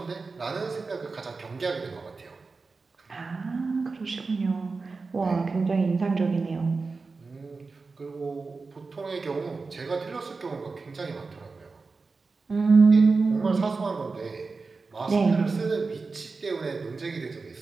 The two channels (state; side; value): quieter; left; 4.1 dB